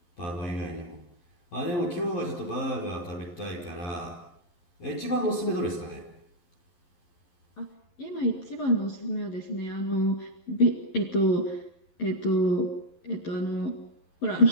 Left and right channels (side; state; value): right; late; 11 ms